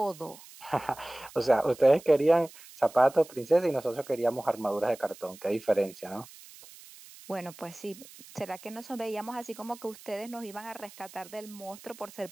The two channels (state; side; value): noise; right; hiss, 20 dB below the sound